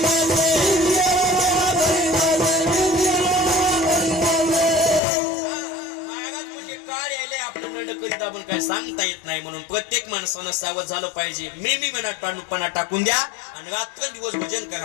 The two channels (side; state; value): right; drops out; at 5.0 s